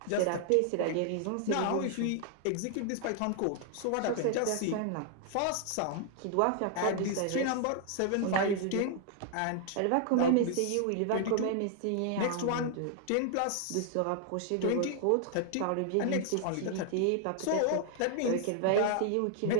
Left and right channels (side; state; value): both; different; correlation 0.00